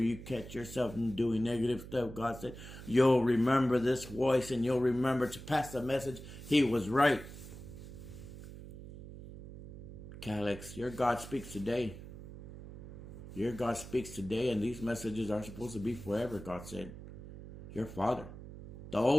you catch yourself doing negative stuff, God said. You'll remember this voice and you'll remember to pass the message. He was right. Catholics, your God speaks today. Your God speaks today, and these messages are supposed to be forever, God said. Your Father. The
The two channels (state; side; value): noise; right; hum, 13 dB below the sound